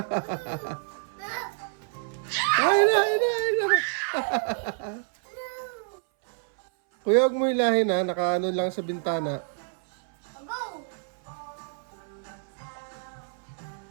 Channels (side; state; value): left; silent; 59 dB below the other